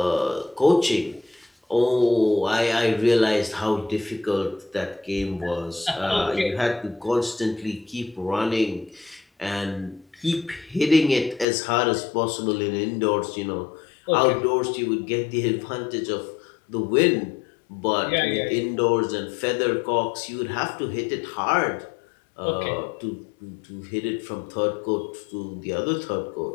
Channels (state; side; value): drops out; right; at 11.5 s